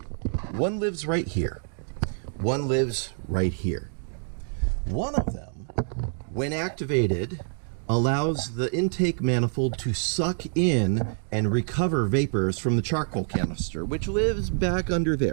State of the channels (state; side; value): silent; left; digital silence